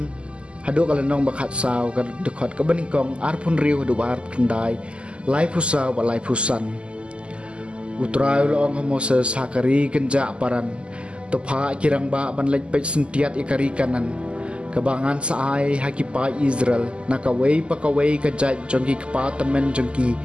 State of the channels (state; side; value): late; left; 0.053 ms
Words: hadu kalenong bakhat saw kadikot kabaningkong arpun riu hadubaar kendai lai pusa wa lai pusan utrai loong Moses hakari kenja paran topa kirang ba banlej pej sentiat ikari kanan kabangan saai hakipai Israel nakawei pakawei kajat jongki kepatamen jongki